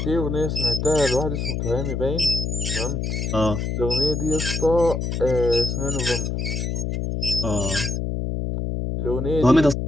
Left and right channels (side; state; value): left; noise; hum, 2 dB below the sound